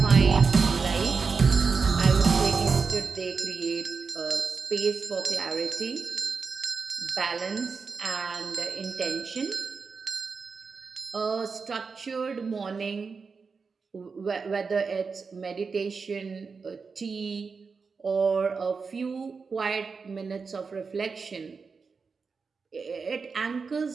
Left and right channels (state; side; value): quieter; left; 5.0 dB